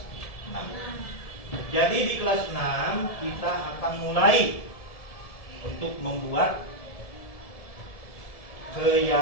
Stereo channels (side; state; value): right; late; 1.7 ms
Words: 6. Jadi di kelas 6 kita akan mulai untuk membuat